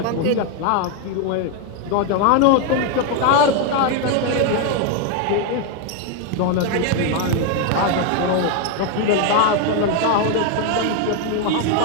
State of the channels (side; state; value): both; different; correlation 0.01